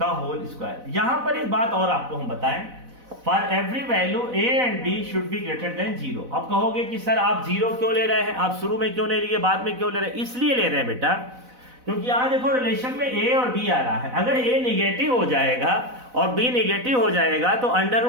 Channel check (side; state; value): left; late; 4.0 ms